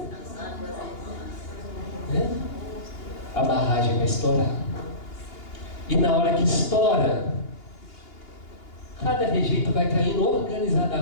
A barragem vai estourar. E na hora que estoura, cada rejeito vai caindo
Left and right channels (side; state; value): right; late; 2.8 ms